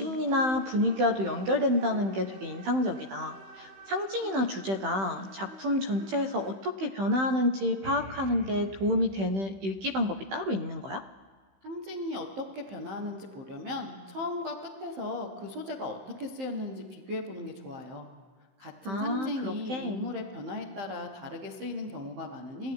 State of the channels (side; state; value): left; late; 15 ms